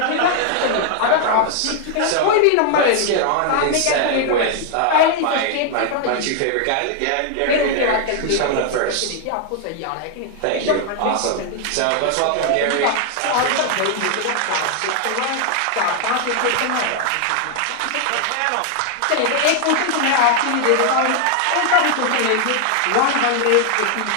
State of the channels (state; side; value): different; both; correlation 0.00